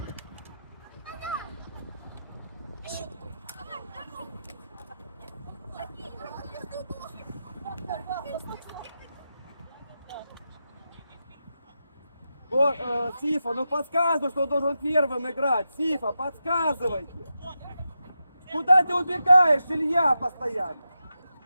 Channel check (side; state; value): both; inverted; correlation -0.89